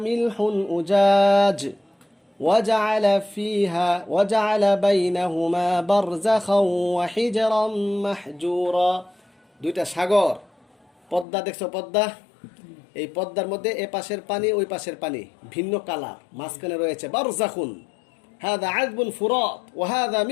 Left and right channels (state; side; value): drops out; right; at 11.2 s